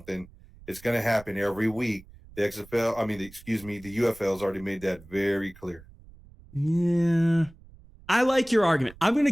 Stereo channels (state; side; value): noise; right; rumble, 22 dB below the sound